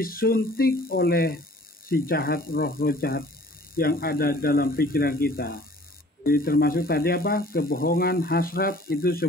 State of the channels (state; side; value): normal; both; correlation 0.51